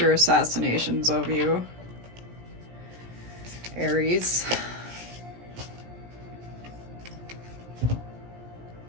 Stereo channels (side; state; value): left; late; 17 ms